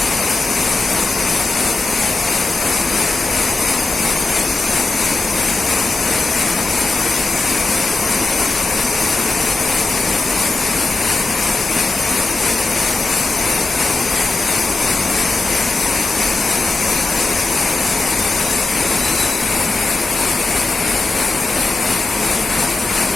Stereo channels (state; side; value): quieter; right; 3.2 dB